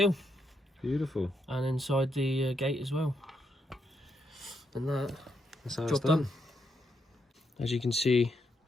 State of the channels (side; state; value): both; normal; correlation 0.79